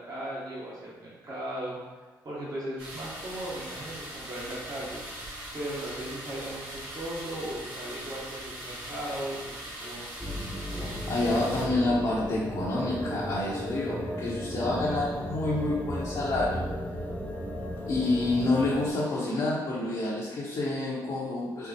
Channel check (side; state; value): both; normal; correlation 0.73